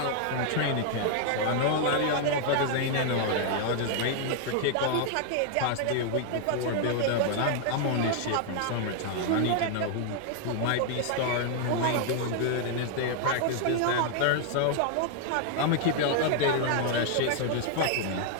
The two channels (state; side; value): different; both; correlation 0.00